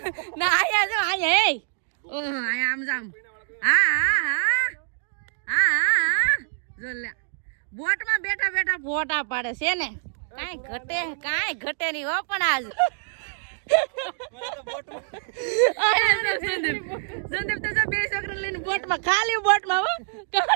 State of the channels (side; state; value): left; silent; digital silence